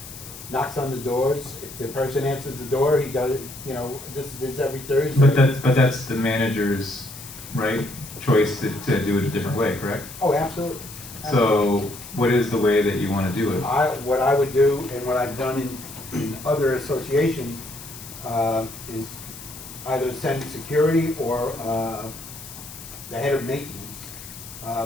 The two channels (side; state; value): left; noise; hiss, 14 dB below the sound